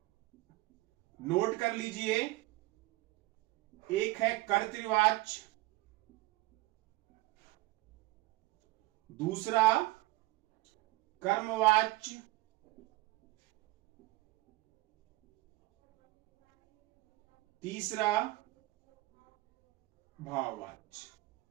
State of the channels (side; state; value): left; quieter; 19.7 dB